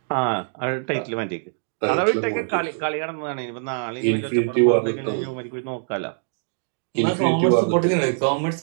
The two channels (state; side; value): silent; left; digital silence